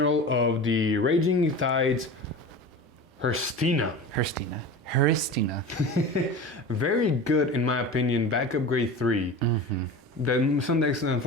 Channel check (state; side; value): normal; both; correlation 0.32